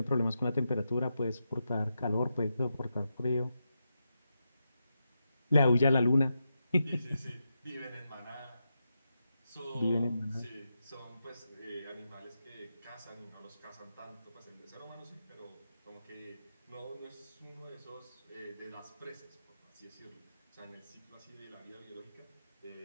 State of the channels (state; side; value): inverted; both; correlation -0.87